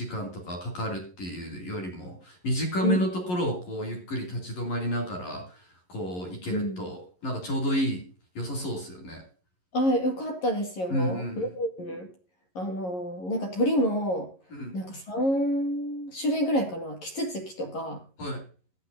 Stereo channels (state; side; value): late; right; 11 ms